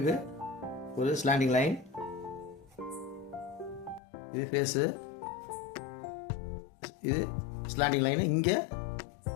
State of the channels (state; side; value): drops out; right; at 4.0 s